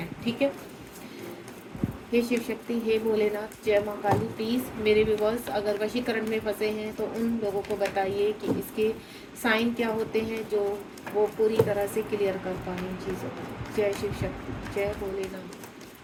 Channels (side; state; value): both; identical; correlation 1.00